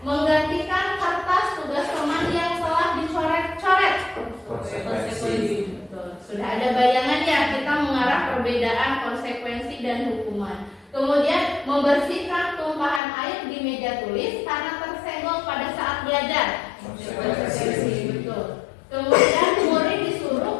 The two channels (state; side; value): drops out; right; at 13.0 s